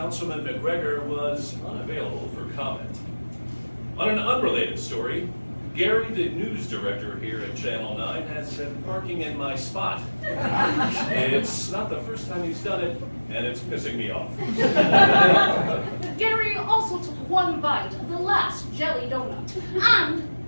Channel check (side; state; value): both; inverted; correlation -1.00